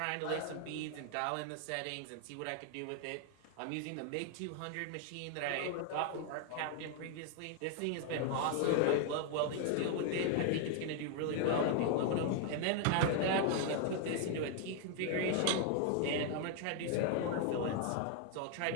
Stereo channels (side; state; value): both; different; correlation 0.00